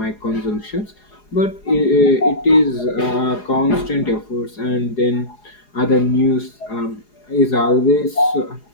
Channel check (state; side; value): late; right; 4.8 ms